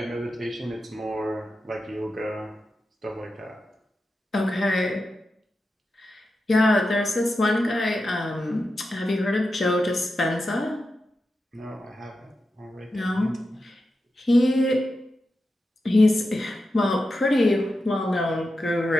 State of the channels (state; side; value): normal; both; correlation 0.90